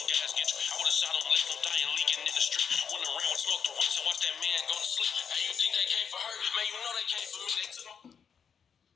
guys get you. I would've shot him, left him dying, leaking in the street. Went around and smoked the rich and watched that man go to sleep. Hey, you think they came for her? Man, you know they came for me. They took my...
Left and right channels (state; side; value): quieter; right; 6.9 dB